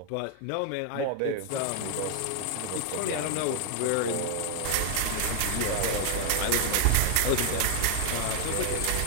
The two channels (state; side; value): different; both; correlation 0.00